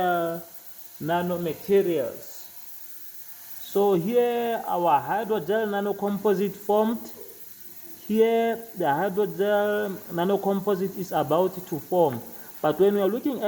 nanomaterials. So here our hydrogel nanocomposite formed. Here the hydrogel nanocomposite is about to form. But when we are looking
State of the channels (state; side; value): identical; both; correlation 1.00